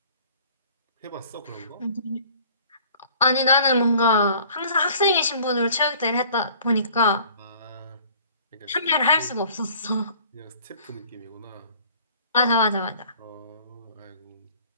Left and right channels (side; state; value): both; inverted; correlation -0.51